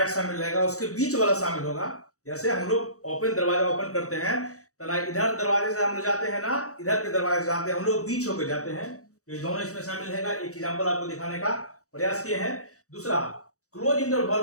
शामिल रहेगा, उसके बीच वाला शामिल होगा। जैसे हम लोग ओपन दरवाजा ओपन करते हैं तो ना इधर दरवाजे से हम लोग जाते हैं, ना इधर के दरवाजे से जाते हैं, हम लोग बीच होकर जाते हैं। तो ये दोनों इसमें शामिल है। एक एग्जांपल आपको दिखाने का प्रयास किए हैं। दूसरा, क्लोज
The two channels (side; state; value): right; late; 0.65 ms